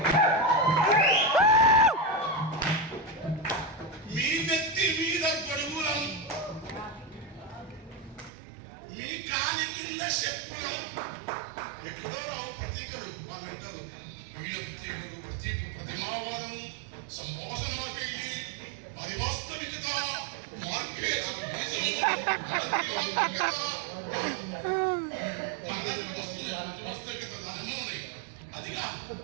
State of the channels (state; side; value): drops out; left; at 8.3 s